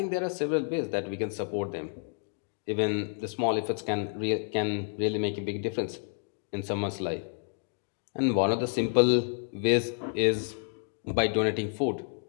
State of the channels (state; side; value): silent; right; 58 dB below the other